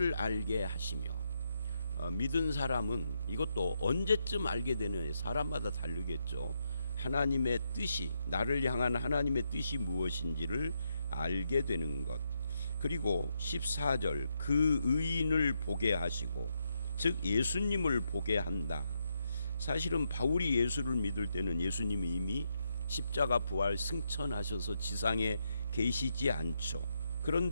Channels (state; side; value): inverted; both; correlation -0.80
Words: 알게 하시며, 믿은 사람은 이것도 언제쯤 알게 되느냐, 사람마다 다르겠죠. 하나님의 뜻이, 나를 향한 하나님의 뜻이 무엇인지를 알게 되는 것. 그리고 14절, 그 의인을 보게 하시고, 즉 예수님을 보게 한다. 사실은 바울이 예수를 믿을 때는 예수님이 이미 십자가 부활 승천하셔서 지상에 계시지 않죠.